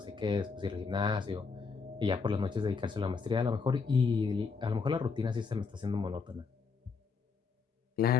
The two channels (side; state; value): right; quieter; 5.1 dB